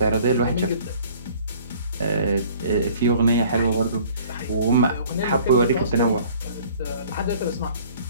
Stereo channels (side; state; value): both; inverted; correlation -0.52